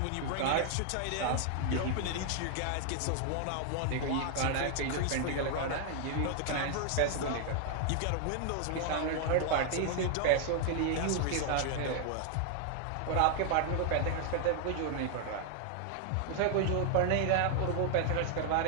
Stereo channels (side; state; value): both; different; correlation 0.00